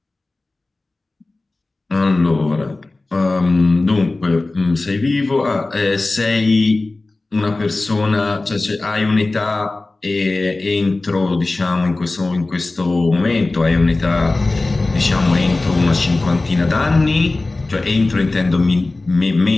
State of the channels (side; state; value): right; quieter; 3.2 dB